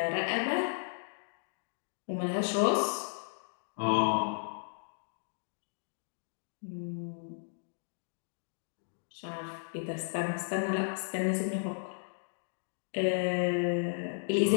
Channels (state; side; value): silent; right; digital silence